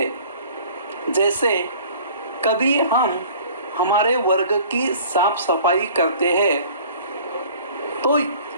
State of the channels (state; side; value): inverted; both; correlation -0.48